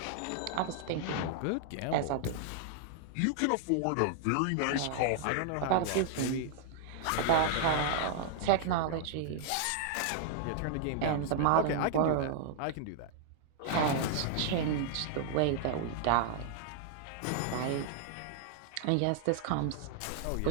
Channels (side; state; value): both; different; correlation 0.00